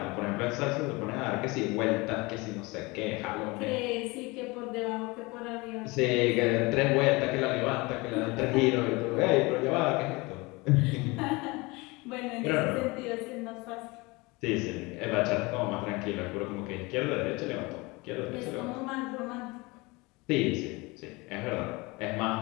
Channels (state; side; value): quieter; right; 24.5 dB